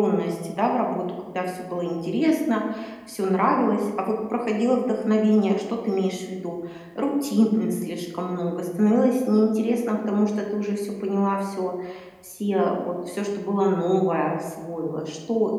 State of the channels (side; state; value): both; identical; correlation 1.00